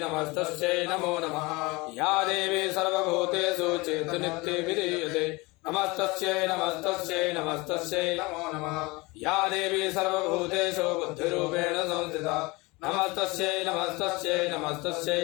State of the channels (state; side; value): quieter; right; 24.3 dB